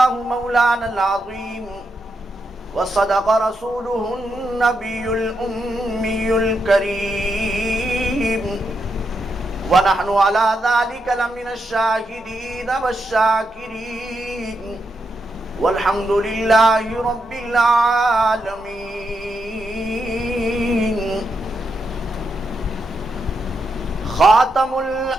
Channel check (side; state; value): both; normal; correlation 0.83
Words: مولانا العظيم وصدق رسوله النبي الأمي الكريم ونحن على ذلك لمن الشاهدين والشاكرين والحمد لله رب العالمين خاتم